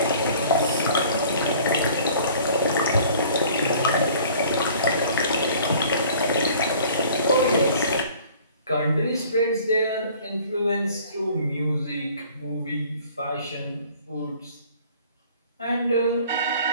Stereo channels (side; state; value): both; inverted; correlation -0.51